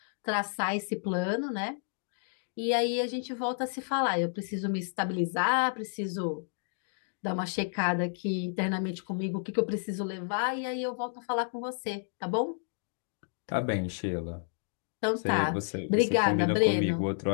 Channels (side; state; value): right; silent; digital silence